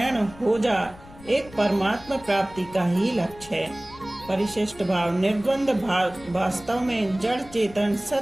हो जा, एक परमात्मा प्राप्ति का ही लक्ष्य है। परिशिष्ट भाव, निर्द्वंद भाव वास्तव में जड़ चेतन,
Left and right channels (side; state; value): left; noise; rumble, 20 dB below the sound